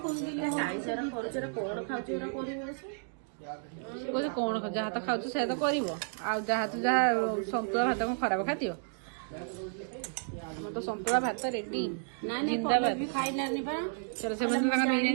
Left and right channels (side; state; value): left; silent; digital silence